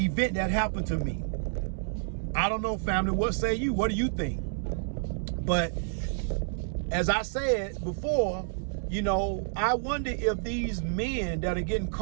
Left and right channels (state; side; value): silent; left; 58 dB below the other